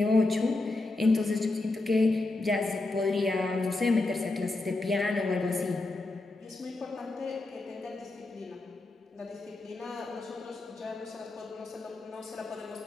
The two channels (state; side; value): quieter; right; 3.1 dB